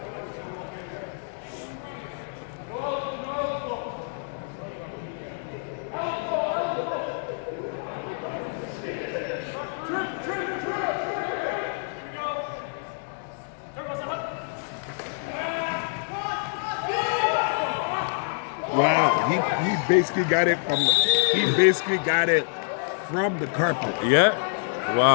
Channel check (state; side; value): silent; right; 60 dB below the other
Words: Wow, he basically got it from the carpet. Yeah.